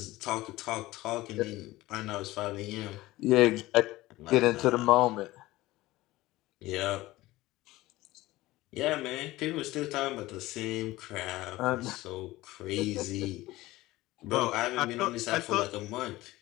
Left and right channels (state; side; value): quieter; right; 18.1 dB